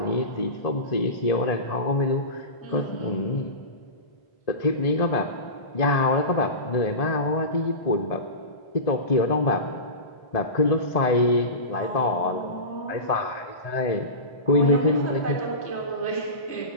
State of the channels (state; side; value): late; right; 1.7 ms